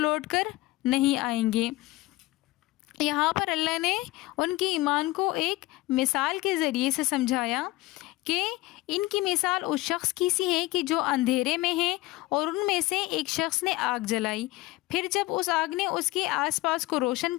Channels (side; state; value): right; quieter; 19.1 dB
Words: کر نہیں آئیں گے۔ یہاں پر اللہ نے ان کی ایمان کو ایک مثال کے ذریعے سے سمجھایا کہ ان کی مثال اس شخص کی سی ہے کہ جو اندھیرے میں ہے اور ان میں سے ایک شخص نے آگ جلائی، پھر جب اس آگ نے اس کے آس پاس کو روشن